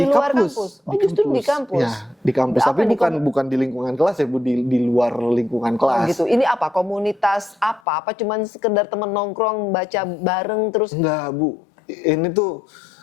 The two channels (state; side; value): drops out; right; at 7.8 s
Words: luar kampus? Oh, justru di kampus? Ya, di kampus. Tapi bukan di lingkungan kelas ya, Bu, di luar lingkungan kelas. Oh gitu. Ini apa? Komunitas apa? Apa cuman sekedar temen nongkrong, baca bareng terus? Enggak, Bu. Ini tuh